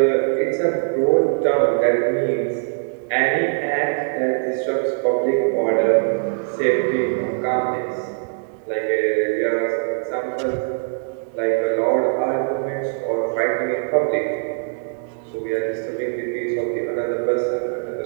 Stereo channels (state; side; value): silent; left; 65 dB below the other